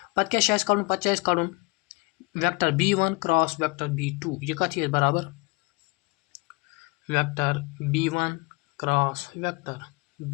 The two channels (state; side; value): quieter; right; 26.9 dB